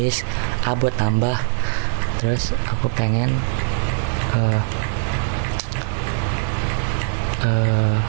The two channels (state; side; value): silent; left; digital silence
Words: a buat tambah, terus aku pengen